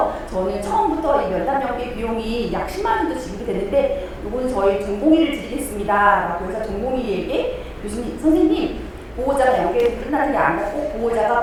저는 처음부터 이 면담 연계 비용이 약 10만 원도 지급이 되는데 이거는 저희 전공의를 드리겠습니다 라고 해서 전공의에게 교수님, 선생님 보호자가 연계에서 끝나는 게 아니라 꼭 보호자가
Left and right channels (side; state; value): both; identical; correlation 1.00